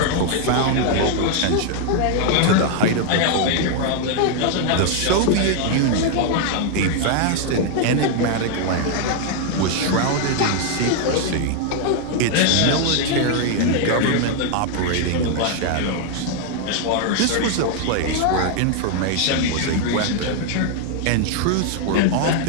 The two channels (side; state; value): both; different; correlation 0.00